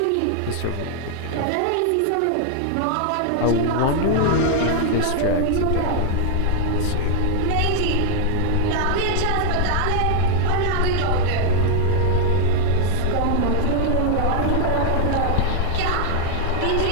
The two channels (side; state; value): both; different; correlation -0.01